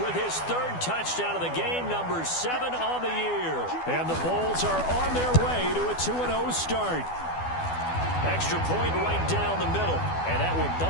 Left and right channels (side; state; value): right; late; 12 ms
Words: his 3rd touchdown of the game, number 7 on the year. And the Bulls are on their way to a 2-0 start. Extra point right down the middle, and that will